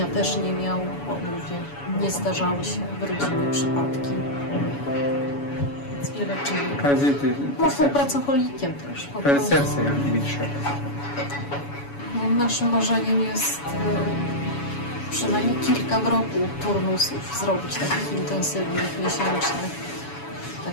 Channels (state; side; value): late; right; 7.1 ms